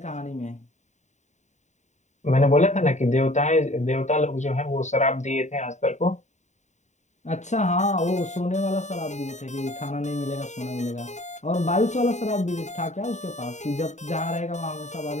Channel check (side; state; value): right; late; 0.34 ms